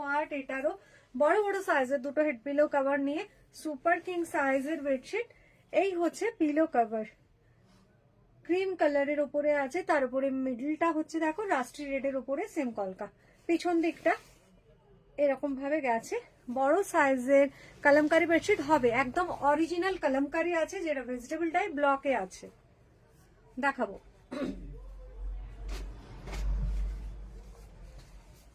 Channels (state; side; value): identical; both; correlation 1.00